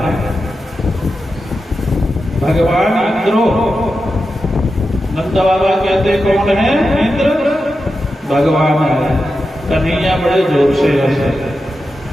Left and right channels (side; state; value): both; normal; correlation 0.90